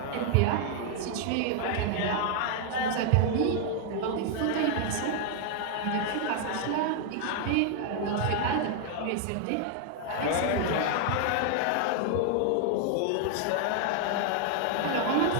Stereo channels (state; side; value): different; both; correlation 0.00